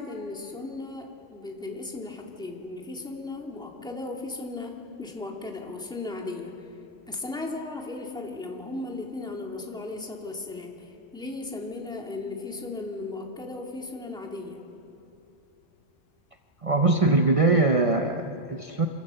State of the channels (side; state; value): both; normal; correlation 0.01